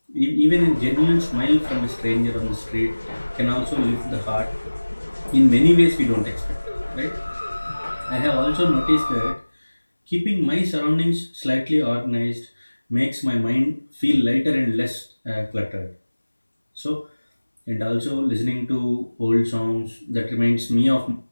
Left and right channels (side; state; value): both; inverted; correlation -1.00